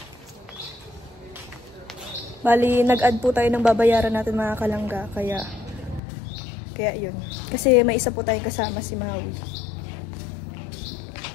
Bali, nag-add po tayo ng babayaran natin mga kalangga. Kaya yun. Kasi may isa po tayong kasama, si Maui.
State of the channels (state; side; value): drops out; right; at 6.0 s